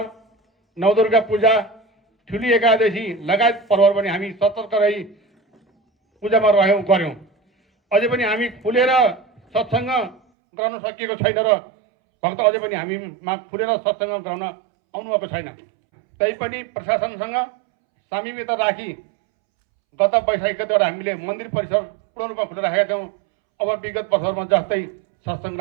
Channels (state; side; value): drops out; left; at 10.2 s